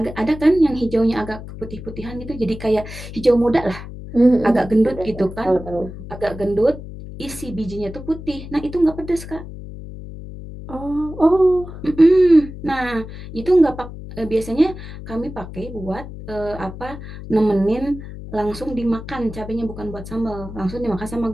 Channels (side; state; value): left; noise; hum, 12 dB below the sound